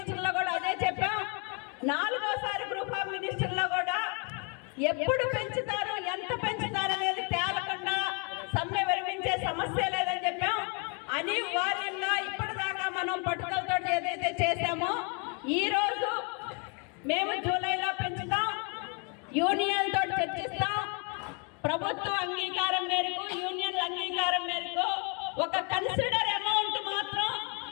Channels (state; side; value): quieter; right; 35.7 dB